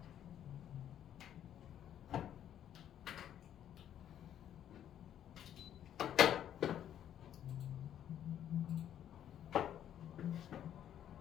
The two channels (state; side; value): quieter; right; 10.4 dB